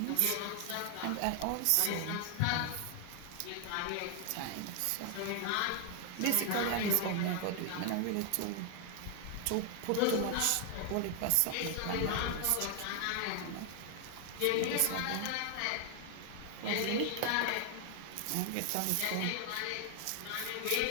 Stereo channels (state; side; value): different; both; correlation 0.00